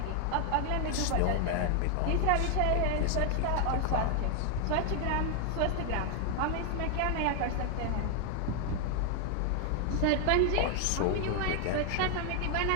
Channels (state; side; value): different; both; correlation 0.00